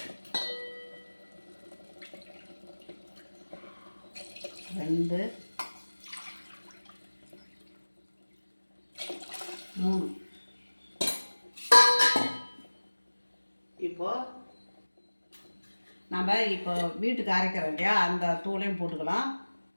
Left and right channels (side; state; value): both; inverted; correlation -1.00